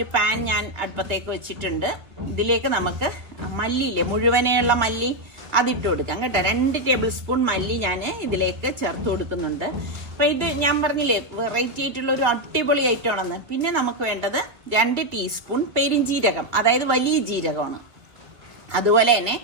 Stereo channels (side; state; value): left; late; 2.0 ms